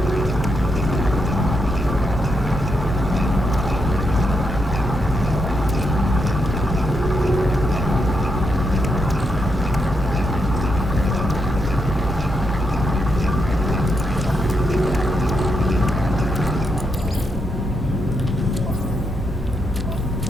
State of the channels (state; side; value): normal; both; correlation 0.81